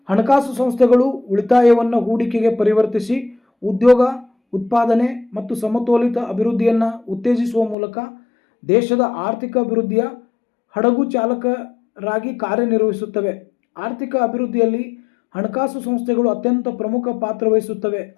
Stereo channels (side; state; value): right; drops out; at 7.8 s